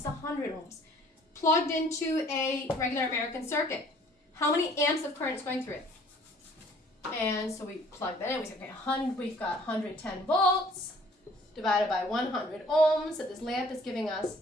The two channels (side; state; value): both; normal; correlation 0.56